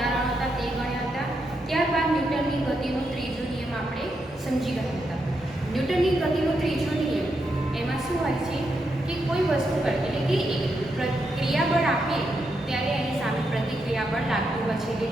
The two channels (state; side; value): normal; both; correlation 0.82